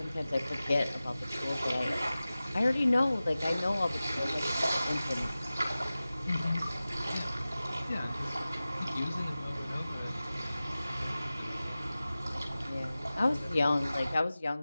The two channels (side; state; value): both; inverted; correlation -0.96